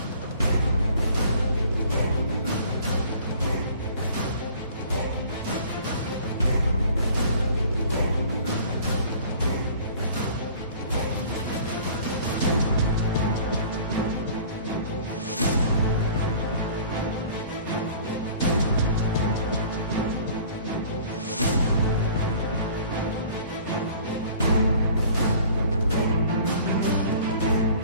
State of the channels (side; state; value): both; inverted; correlation -0.49